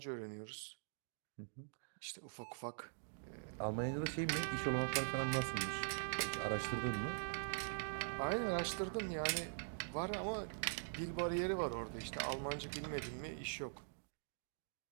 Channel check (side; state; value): left; silent; digital silence